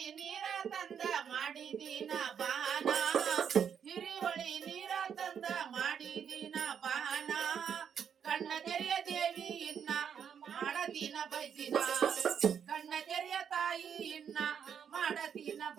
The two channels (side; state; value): left; quieter; 7.8 dB